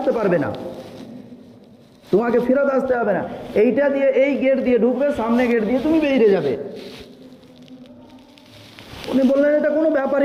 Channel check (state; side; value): identical; both; correlation 1.00